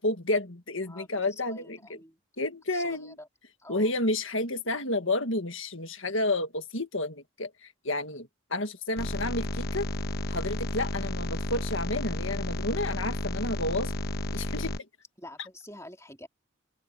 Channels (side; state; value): both; normal; correlation 0.02